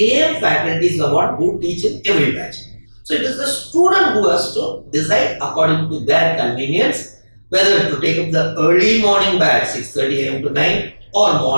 faculties who teach in every batch. So, it is the student who has to decide according to their convenience whether to take up the early morning batch 6:30 am to 9, or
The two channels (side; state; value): both; inverted; correlation -1.00